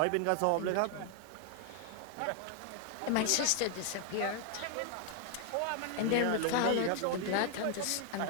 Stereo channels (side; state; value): both; different; correlation 0.00